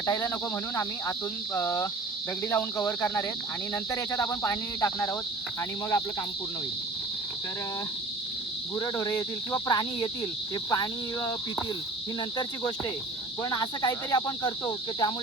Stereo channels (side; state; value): left; quieter; 3.1 dB